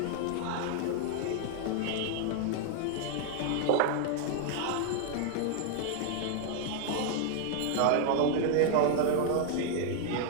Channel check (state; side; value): different; both; correlation 0.00